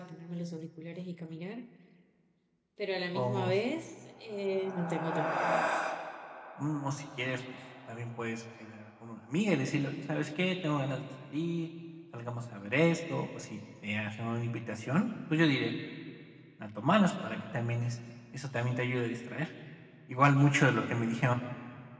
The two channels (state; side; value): identical; both; correlation 1.00